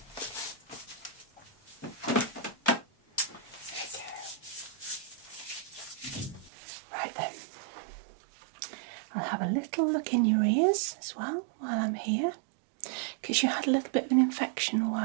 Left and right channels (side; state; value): left; drops out; at 6.5 s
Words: Right then. I'll have a little look in your ears as well while I'm here. Because you had a little bit of an infection a